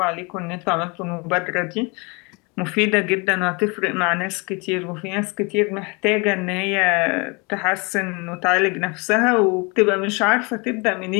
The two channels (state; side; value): quieter; right; 29.3 dB